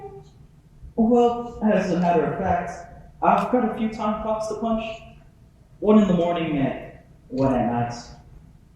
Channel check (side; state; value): both; identical; correlation 1.00